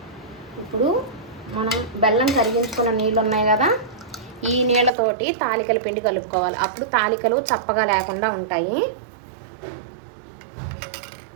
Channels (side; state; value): left; drops out; at 4.9 s